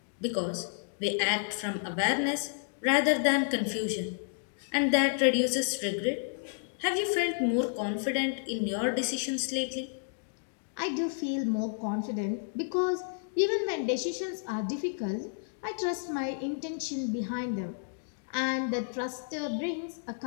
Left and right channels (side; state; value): right; silent; digital silence